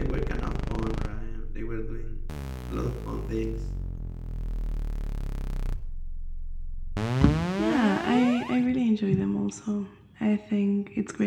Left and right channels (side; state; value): both; identical; correlation 1.00